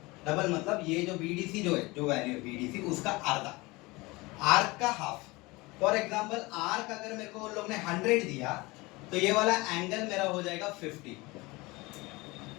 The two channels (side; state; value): right; quieter; 23.0 dB